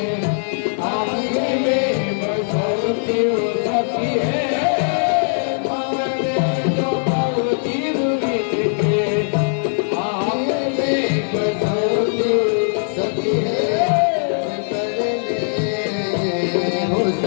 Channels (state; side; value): silent; right; 66 dB below the other